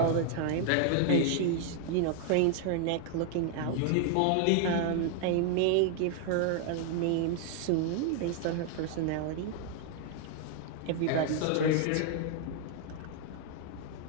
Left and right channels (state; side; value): different; both; correlation 0.00